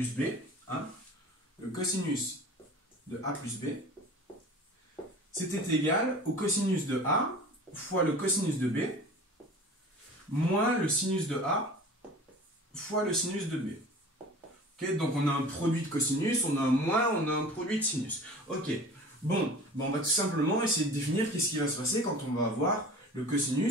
b, hein, le cosinus de a plus b, c'était égal au cosinus de a fois le cosinus de b moins le sinus de A fois le sinus de B. Okay, donc on a un produit de cosinus, on a un moins, on a un produit de sinus. Ok, bon, on va tout simplement essayer de définir qu'est-ce qui va se passer quand on va avoir le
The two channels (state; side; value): normal; both; correlation 0.40